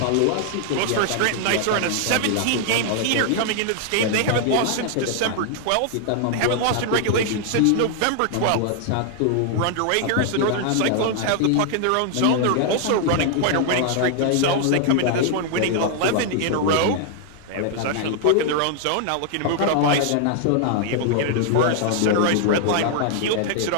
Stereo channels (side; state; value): both; different; correlation 0.00